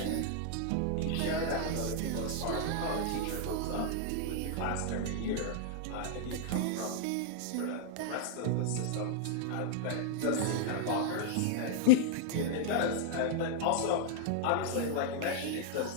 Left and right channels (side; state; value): both; different; correlation -0.01